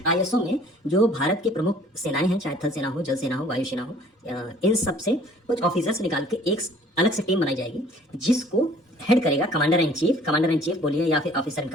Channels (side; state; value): both; normal; correlation 0.54